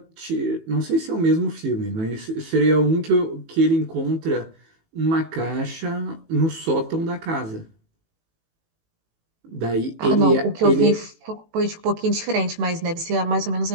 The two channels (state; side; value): late; left; 18 ms